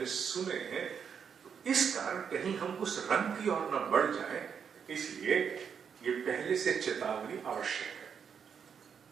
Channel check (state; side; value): quieter; left; 7.1 dB